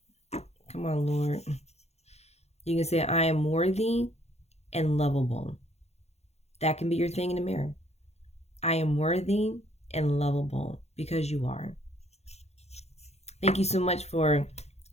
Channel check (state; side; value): late; right; 0.31 ms